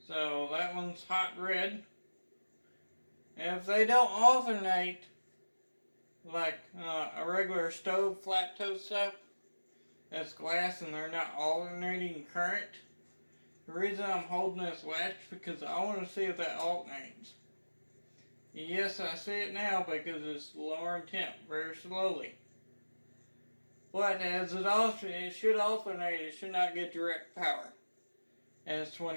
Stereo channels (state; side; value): inverted; both; correlation -1.00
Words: So that one's hot red. And if they don't alternate like a regular stove flat toast stuff, that's glass and they're not alternating current. The reason I'm holding this latch because I want to see if that alternates. Yes, I see it now because it's lowering temp very slowly. But as it should alternate, it should not get direct power as